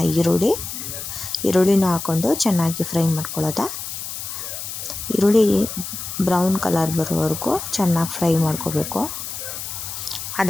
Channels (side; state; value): left; noise; hiss, 7 dB below the sound